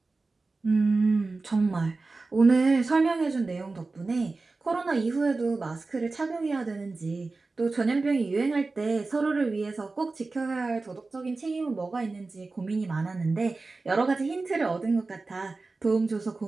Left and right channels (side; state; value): left; quieter; 3.7 dB